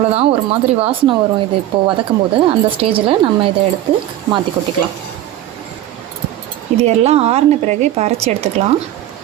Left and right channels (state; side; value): quieter; left; 13.3 dB